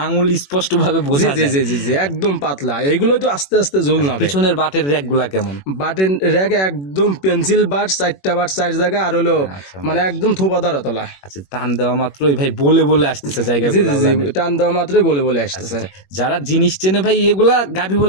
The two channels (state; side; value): late; right; 21 ms